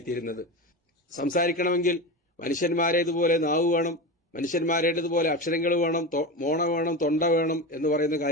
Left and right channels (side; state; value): both; normal; correlation 0.23